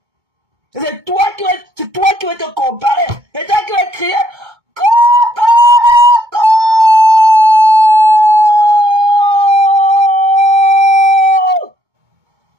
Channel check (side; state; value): left; late; 2.2 ms